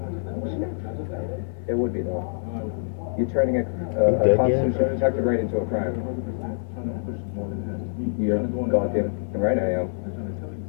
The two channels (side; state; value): right; silent; 57 dB below the other